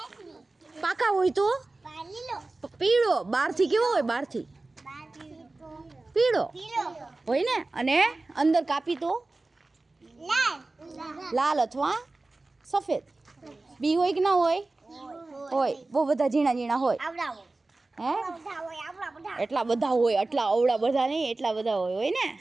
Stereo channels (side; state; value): left; quieter; 3.2 dB